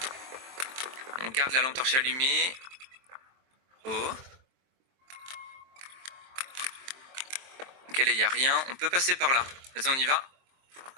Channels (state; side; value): late; left; 23 ms